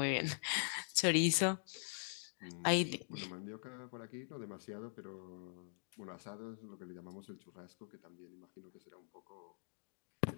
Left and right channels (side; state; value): right; silent; digital silence